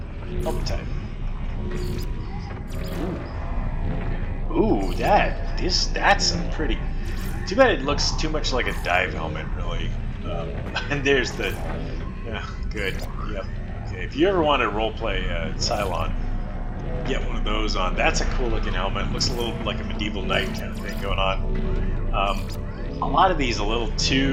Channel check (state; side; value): identical; both; correlation 1.00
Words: up type. Ooh, that's a pretty. Too bad it looks too much like a dive helmet, really. And there's the. Yeah, good. Yep. Okay, if you ever want to roleplay Cylon, get one of those on. That's a cool looking helmet. Looks a little like a medieval knight kind of thing going on. A lot of these a little